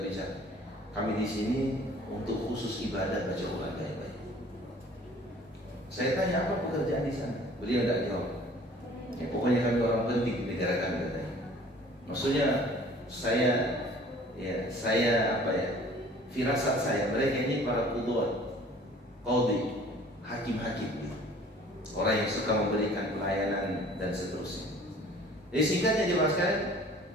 bicara. Kami di sini untuk khusus ibadah baca Quran baik-baik. Saya tanya apa pekerjaan di sana? Beliau tidak jawab. Ya, pokoknya kami orang penting di negara kami katanya. Maksudnya firasat saya, mereka ini para qudwat, qadhi, hakim-hakim, orang yang suka memberikan pelayanan dan seterusnya. Jadi singkatnya jemaah sekalian,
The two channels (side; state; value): both; normal; correlation 0.51